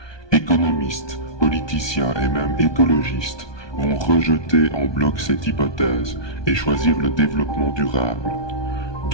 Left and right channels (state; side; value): late; right; 1.2 ms